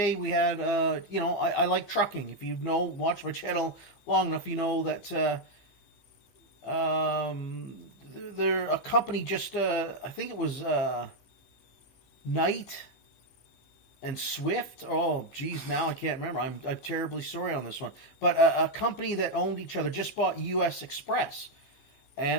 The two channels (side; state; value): right; late; 15 ms